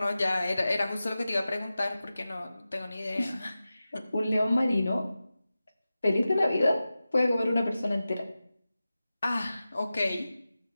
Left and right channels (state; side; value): inverted; both; correlation -0.95